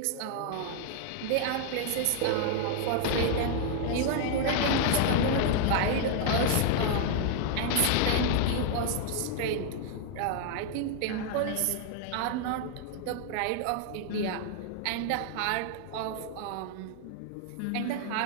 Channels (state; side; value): different; both; correlation 0.00